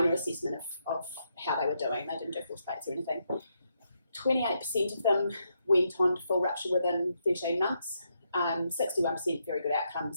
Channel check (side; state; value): both; inverted; correlation -0.79